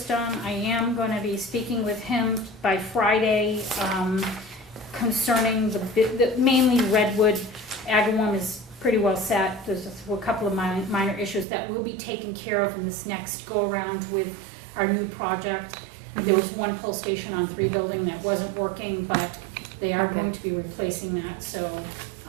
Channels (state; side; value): drops out; left; at 11.5 s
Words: I am gonna be speaking with him by Friday, concerning the mainly Redwood Agawam is pretty well set. There's a couple of minor issues that will be taken care of in this next go-around with our new project. There was one pull station on 3 building that wasn't working, but they are going to be replacing that, so,